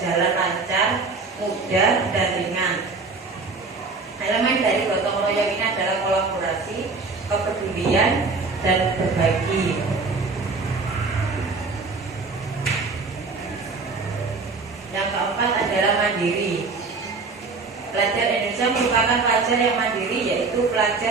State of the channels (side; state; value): left; quieter; 4.1 dB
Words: lancar, mudah, dan ringan. Elemen dari gotong royong ini adalah kolaborasi, kepedulian, dan berbagi. Yang keempat adalah mandiri. Pelajar Indonesia merupakan pelajar yang mandiri, yaitu